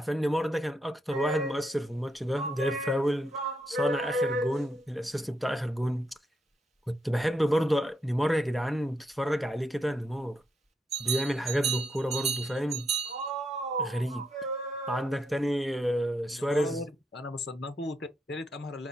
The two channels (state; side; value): normal; both; correlation 0.80